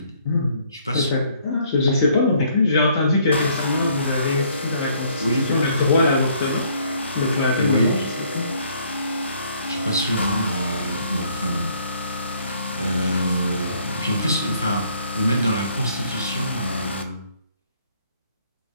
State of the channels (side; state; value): both; inverted; correlation -0.64